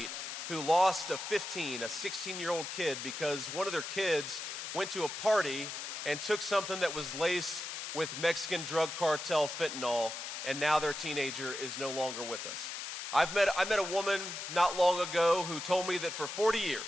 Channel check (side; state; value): left; noise; hiss, 6 dB below the sound